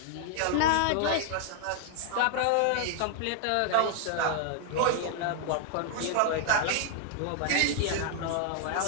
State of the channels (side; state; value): both; different; correlation 0.00